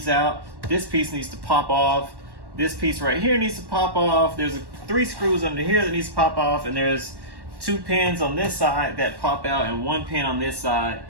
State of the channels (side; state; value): left; late; 1.1 ms